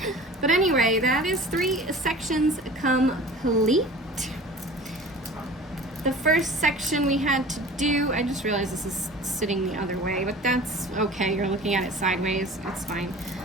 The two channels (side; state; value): both; normal; correlation 0.41